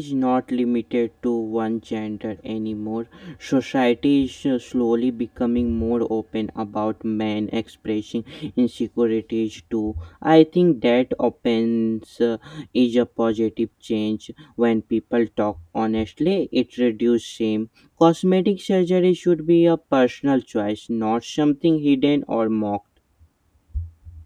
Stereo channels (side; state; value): both; identical; correlation 1.00